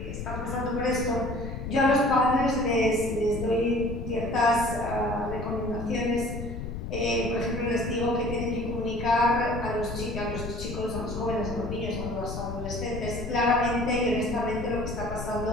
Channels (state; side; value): noise; left; rumble, 7 dB below the sound